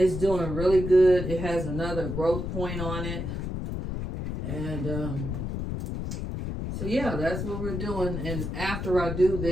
doing really good. It has another growth point on it. And so yeah, that's what we're doing. And after I do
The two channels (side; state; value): left; noise; rumble, 4 dB below the sound